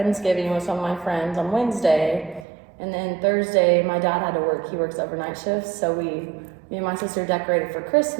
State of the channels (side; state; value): left; drops out; at 2.5 s